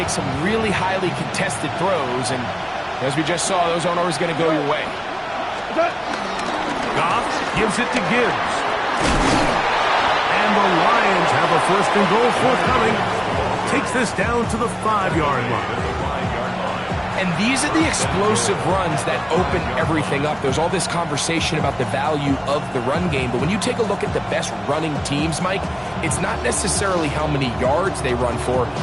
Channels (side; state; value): both; identical; correlation 1.00